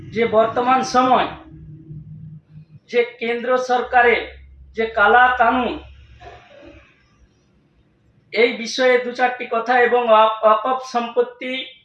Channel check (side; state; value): both; identical; correlation 1.00